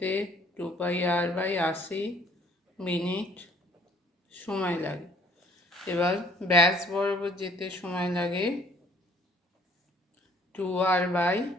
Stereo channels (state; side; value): normal; both; correlation 0.59